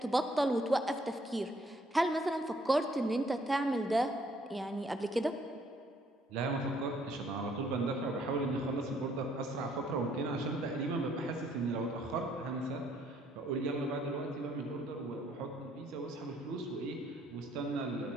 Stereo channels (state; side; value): normal; both; correlation 0.65